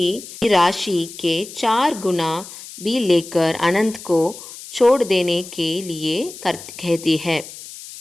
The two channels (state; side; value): noise; left; hiss, 15 dB below the sound